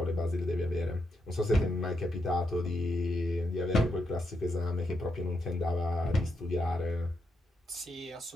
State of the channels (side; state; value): both; normal; correlation 0.81